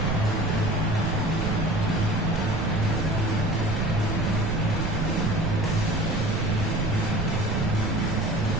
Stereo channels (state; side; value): noise; right; rumble, 1 dB below the sound